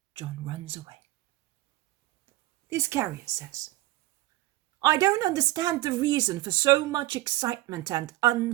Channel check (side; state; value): left; quieter; 17.1 dB